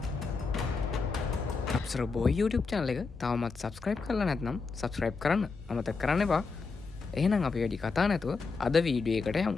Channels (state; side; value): quieter; right; 4.5 dB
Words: බෝයි YouTube channel එක තවමත් subscribe කරලා නැත්නම් subscribe කරන්න අමතක කරන්න එපා. එහෙනම් අපි වැඩි කතා නැතුව අද වීඩියෝ එකට